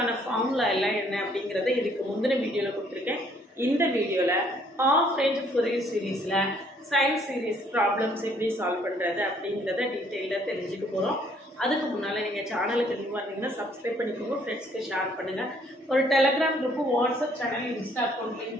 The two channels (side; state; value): both; normal; correlation 0.64